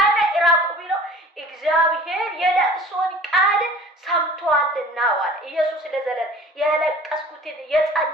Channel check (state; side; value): normal; both; correlation 0.46